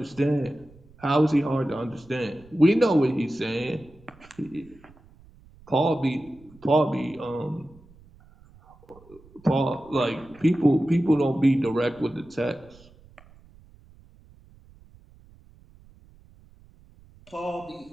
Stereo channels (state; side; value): noise; right; rumble, 26 dB below the sound